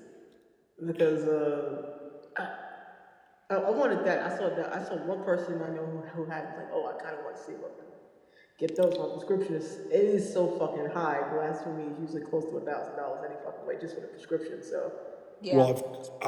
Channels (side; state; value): both; identical; correlation 1.00